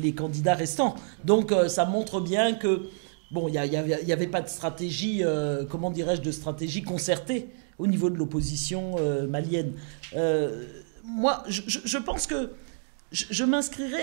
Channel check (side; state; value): left; silent; 59 dB below the other